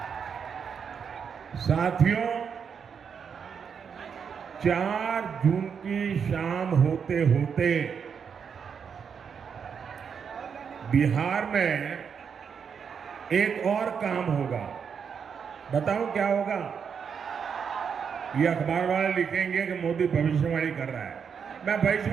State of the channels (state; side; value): quieter; left; 6.8 dB